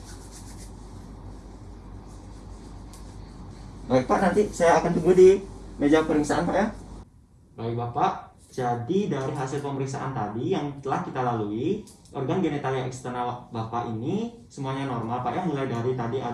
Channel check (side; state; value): both; identical; correlation 1.00